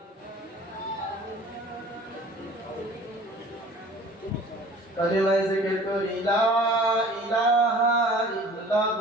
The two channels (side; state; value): both; normal; correlation 0.47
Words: कलिमा जिक्र करी ला इलाहा